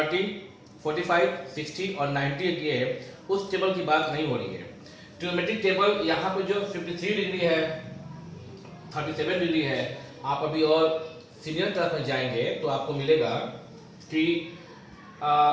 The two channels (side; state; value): both; identical; correlation 1.00